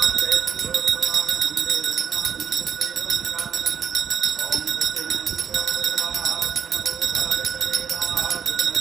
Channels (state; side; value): quieter; left; 7.7 dB